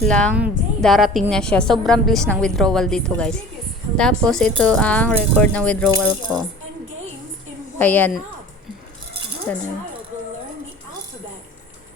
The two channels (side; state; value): both; normal; correlation 0.41